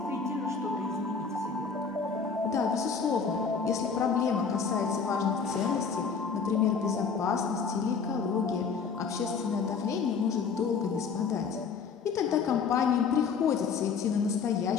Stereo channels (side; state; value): right; quieter; 5.6 dB